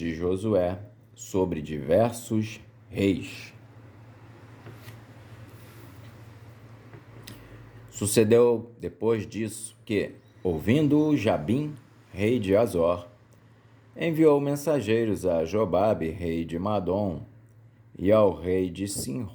Josué sobre diversos reis. Sucedeu depois disso que, ouvindo Jabim, rei de Azor, enviou mensageiros a Jobabe, rei de Madom, e ao rei de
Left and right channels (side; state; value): both; identical; correlation 1.00